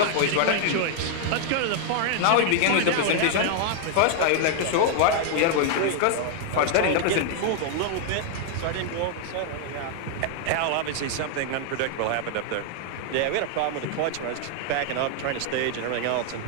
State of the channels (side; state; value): both; different; correlation 0.00